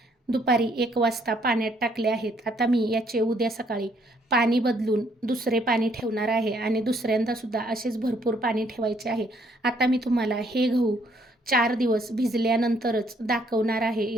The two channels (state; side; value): normal; both; correlation 0.67